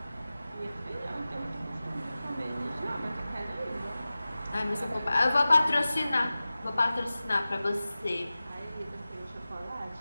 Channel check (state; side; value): inverted; both; correlation -0.96